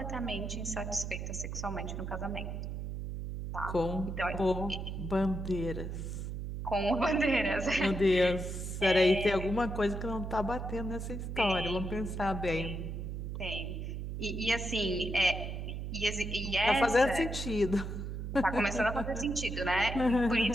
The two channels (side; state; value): right; noise; hum, 5 dB below the sound